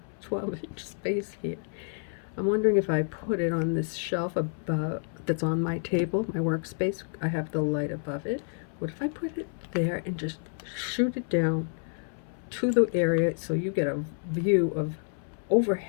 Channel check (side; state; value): right; silent; 58 dB below the other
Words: 12-inch space here. I'm wondering if I put it on this shelf above, that's on my table, my workspace. I have the light above it. What if I put it there and just shoot it down to the area so you get a view of